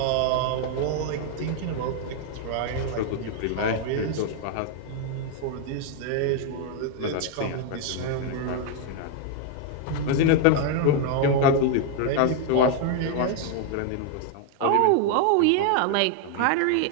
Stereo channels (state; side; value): different; both; correlation 0.00